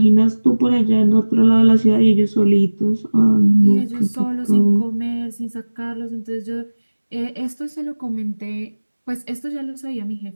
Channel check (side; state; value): both; inverted; correlation -1.00